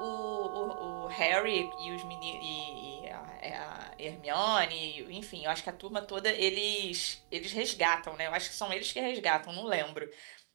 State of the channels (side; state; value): left; silent; digital silence